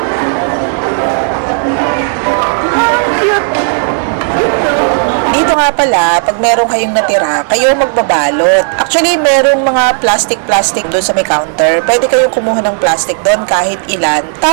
Ang cute. Dito nga pala, pag meron kayong natira, kayo magbabalot. Actually, merong mga plastic doon sa may counter. Pwede kayong kumuha ng plastic doon kahit ilan.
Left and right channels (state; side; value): silent; left; 62 dB below the other